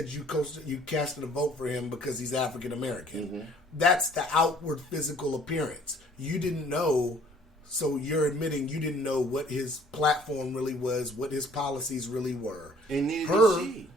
you casted a vote for him because he's African American. Mm-hmm. That's the outward physical appearance. You didn't know, so you're admitting you didn't know what his platform really was, what his policies really were. And neither did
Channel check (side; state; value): both; normal; correlation 0.56